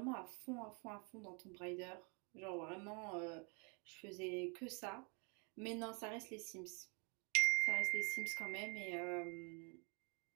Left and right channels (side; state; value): left; quieter; 33.8 dB